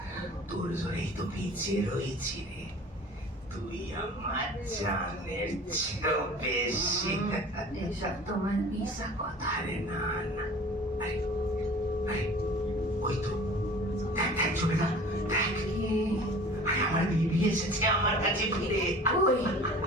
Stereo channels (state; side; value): normal; both; correlation 0.43